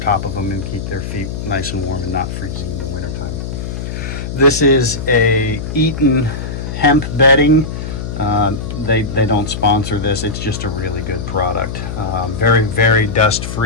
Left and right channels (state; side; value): noise; left; hum, 6 dB below the sound